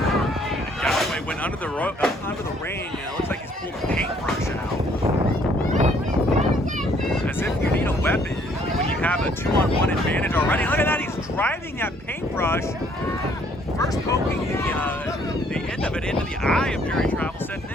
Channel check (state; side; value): normal; both; correlation 0.64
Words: Galloway went under the ring, and it looks like he's pulled a paintbrush out. As if you need a weapon when you have a 2-on-1 advantage already. Look at that, he's driving that paintbrush, first poking the end of it into the eye of Jerry Travelstead, and